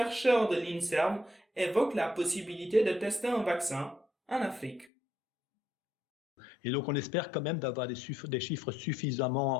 de l'INSERM évoquent la possibilité de tester un vaccin en Afrique. Et donc, on espère quand même d'avoir des chiffres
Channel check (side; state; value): right; drops out; at 4.9 s